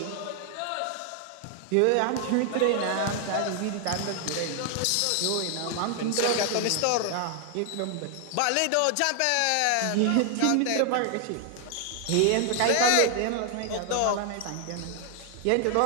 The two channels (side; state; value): both; different; correlation 0.00